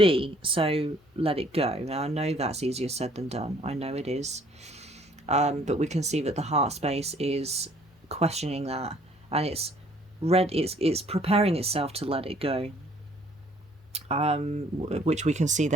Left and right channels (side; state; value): both; normal; correlation 0.60